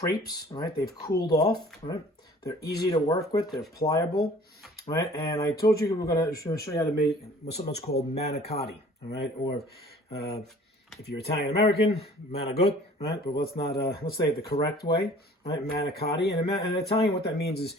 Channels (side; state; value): both; normal; correlation 0.50